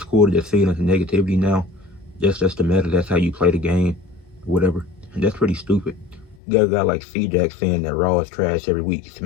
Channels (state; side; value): drops out; right; at 6.4 s